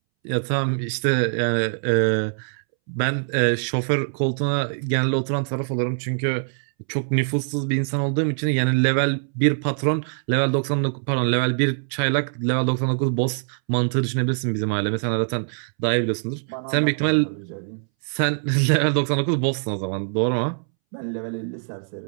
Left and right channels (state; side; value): silent; left; 63 dB below the other